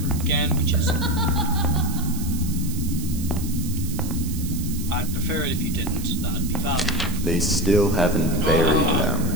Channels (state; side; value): noise; right; hiss, 12 dB below the sound